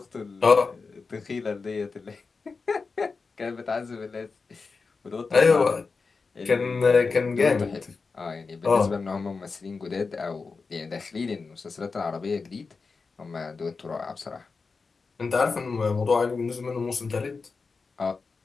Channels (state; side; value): quieter; right; 4.5 dB